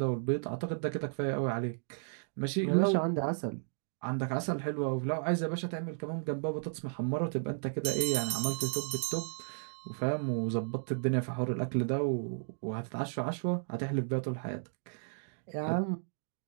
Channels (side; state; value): left; silent; digital silence